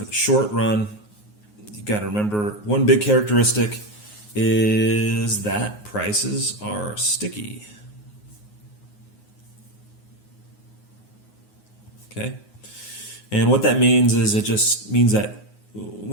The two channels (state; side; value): late; right; 9.5 ms